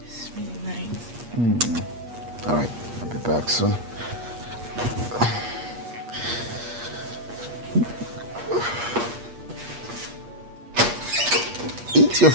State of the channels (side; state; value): left; late; 8.4 ms